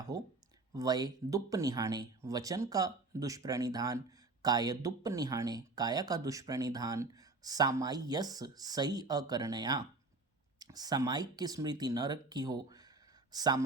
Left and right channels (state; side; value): quieter; left; 3.4 dB